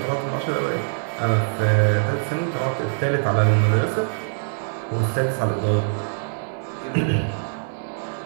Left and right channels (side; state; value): left; silent; 59 dB below the other